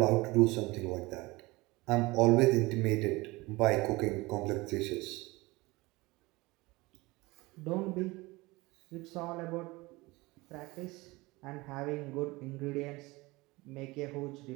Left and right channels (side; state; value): left; quieter; 22.2 dB